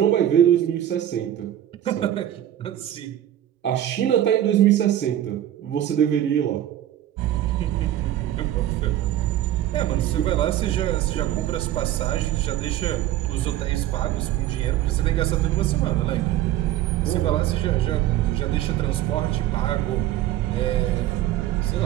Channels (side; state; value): left; quieter; 12.4 dB